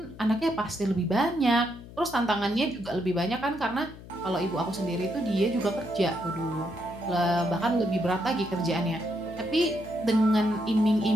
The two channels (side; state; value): left; noise; hum, 17 dB below the sound